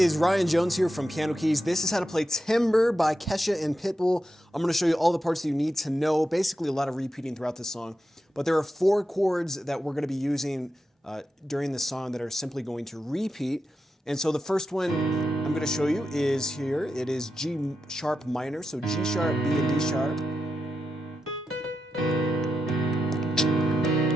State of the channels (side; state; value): both; normal; correlation 0.88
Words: Ryan Jones here from Piano Keys. This is how to play Timber by Kesha and Pitbull. I'm going to show you all the parts that you need to know. Basically a lot of repeating throughout this song. But there are 4 chords that we're going to be using during this song that are simply going to repeat. And so the first one I'm going to show you is here. It is G sharp minor, so G sharp, B and D sharp.